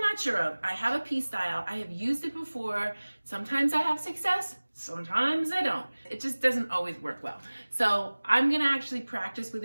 not sure of, I have a pee style. I have used it before. Sometimes I have success, sometimes I don't. It just doesn't always work well. So I'm gonna actually practice with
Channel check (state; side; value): inverted; both; correlation -1.00